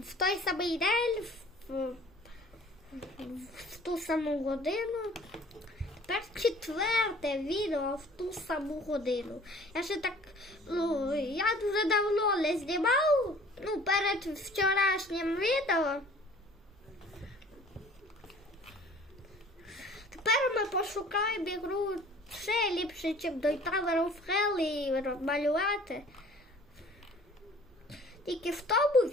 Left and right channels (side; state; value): both; normal; correlation 0.50